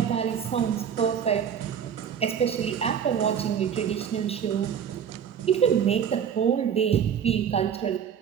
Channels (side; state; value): left; quieter; 8.1 dB